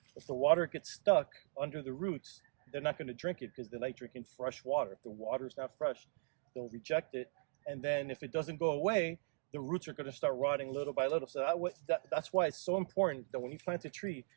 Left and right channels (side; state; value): left; silent; digital silence